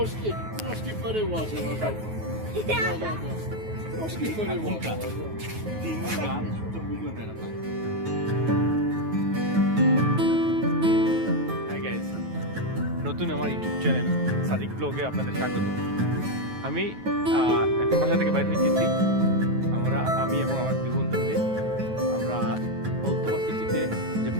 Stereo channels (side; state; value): left; late; 9.3 ms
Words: переважила. Трошки переважила. হাই গাইস, নতুন আমার ইউটিউব চ্যানেল সাদিক ব্লগে আপনাদের স্বাগত। আমি একটা বাসা থেকে বাইরে এসেছি। আমি এবং আমার দুই বন্ধু মিলে আমরা কলতবা সিটিতে যে